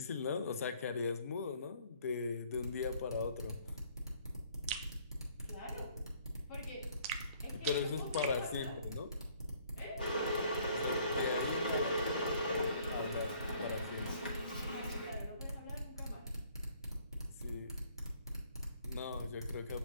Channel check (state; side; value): inverted; both; correlation -0.61